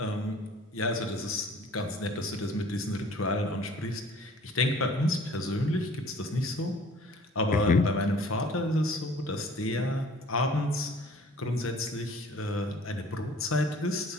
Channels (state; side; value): normal; both; correlation 0.51